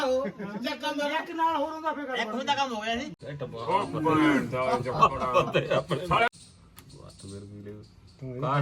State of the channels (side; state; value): both; identical; correlation 1.00